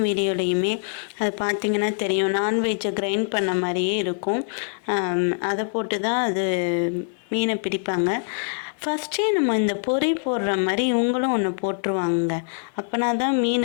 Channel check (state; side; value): silent; right; digital silence